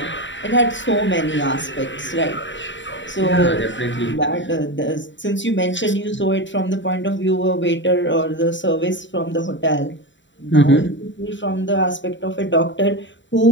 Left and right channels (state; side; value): late; right; 0.54 ms